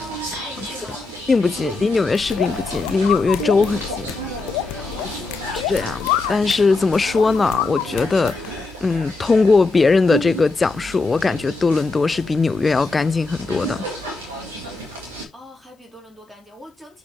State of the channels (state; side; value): quieter; right; 3.7 dB